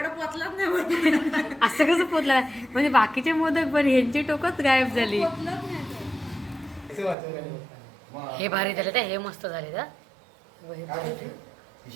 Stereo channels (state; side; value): drops out; left; at 7.2 s